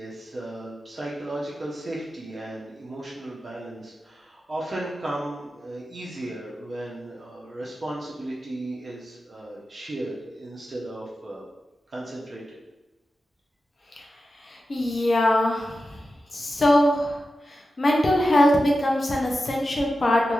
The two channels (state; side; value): normal; both; correlation 0.92